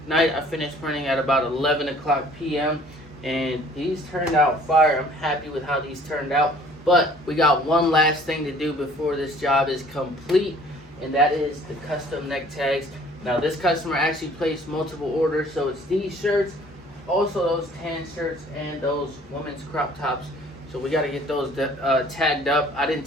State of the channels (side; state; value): both; normal; correlation 0.54